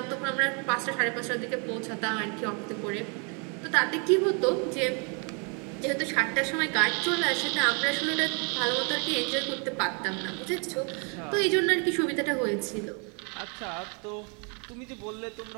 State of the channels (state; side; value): quieter; left; 36.1 dB